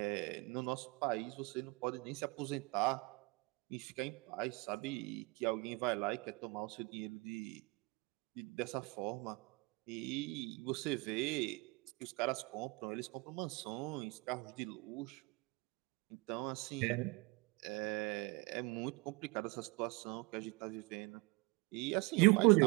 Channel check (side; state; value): left; quieter; 25.7 dB